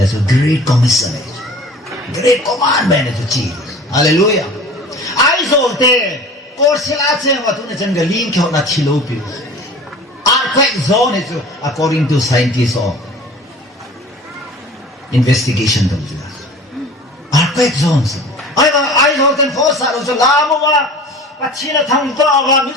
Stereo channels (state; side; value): normal; both; correlation 0.42